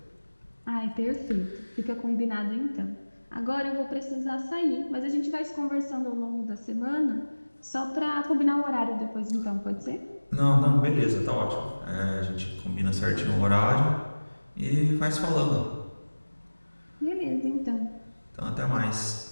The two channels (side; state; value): both; inverted; correlation -1.00